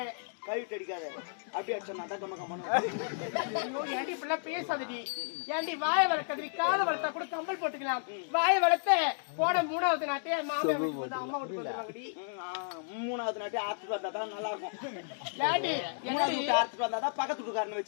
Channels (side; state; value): right; silent; digital silence